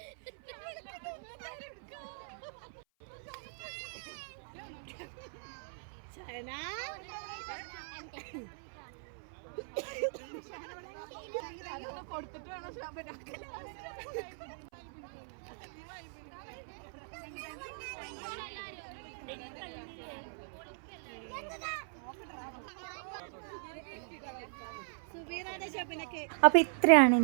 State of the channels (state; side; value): silent; left; 52 dB below the other